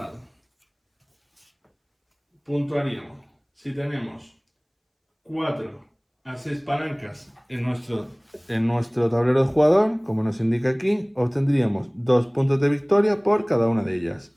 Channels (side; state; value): both; identical; correlation 1.00